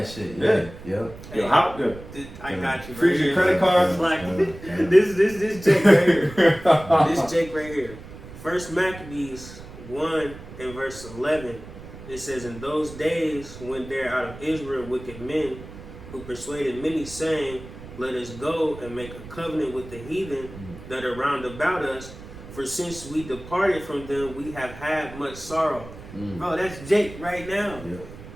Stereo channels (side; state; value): right; noise; rumble, 15 dB below the sound